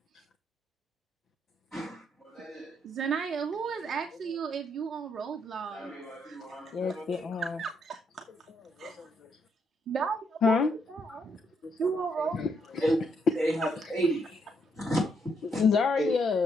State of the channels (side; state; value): both; normal; correlation 0.75